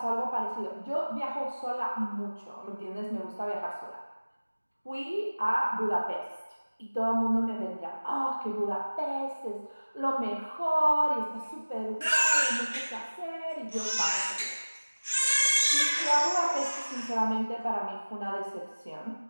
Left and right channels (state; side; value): inverted; both; correlation -1.00